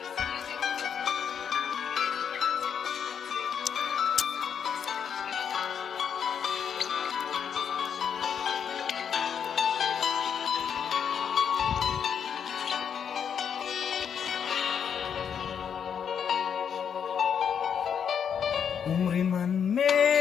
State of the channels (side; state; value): right; quieter; 7.6 dB